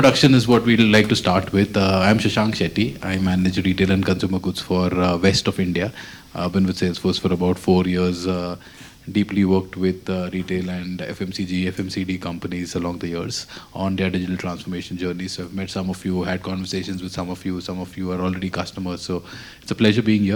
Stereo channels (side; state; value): both; identical; correlation 1.00